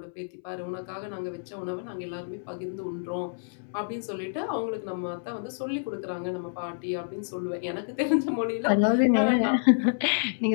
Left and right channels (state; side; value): silent; right; 59 dB below the other